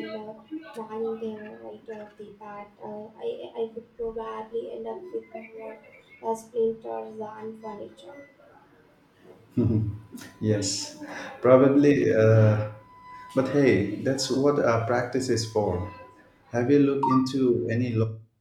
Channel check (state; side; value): identical; both; correlation 1.00